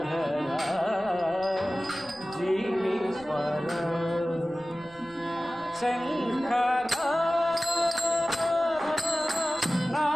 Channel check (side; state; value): right; noise; rumble, 25 dB below the sound